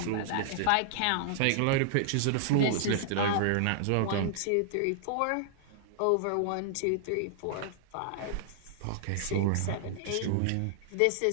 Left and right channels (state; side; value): different; both; correlation -0.01